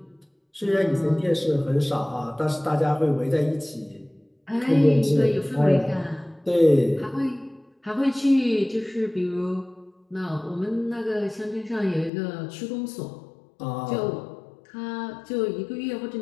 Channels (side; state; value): right; drops out; at 12.1 s